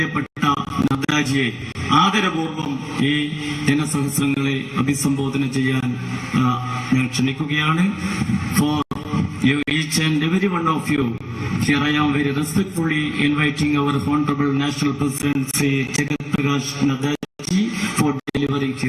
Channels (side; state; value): both; identical; correlation 1.00